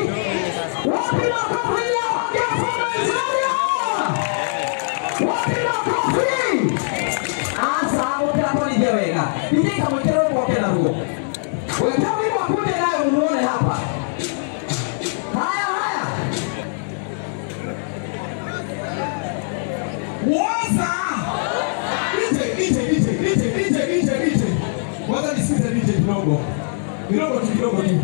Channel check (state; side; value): silent; right; 62 dB below the other